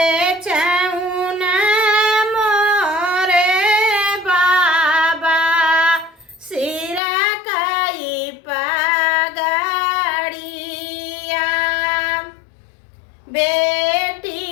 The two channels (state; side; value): drops out; right; at 7.0 s